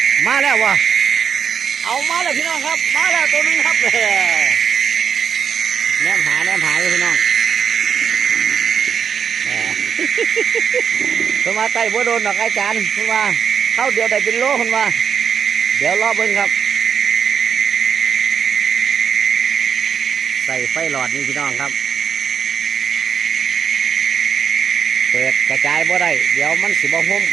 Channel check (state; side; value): quieter; left; 7.2 dB